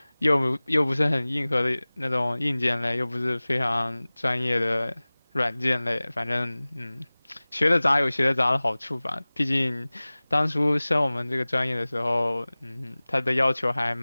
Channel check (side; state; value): both; inverted; correlation -0.99